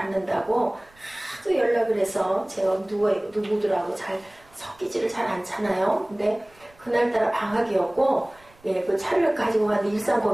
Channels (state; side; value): noise; right; rumble, 29 dB below the sound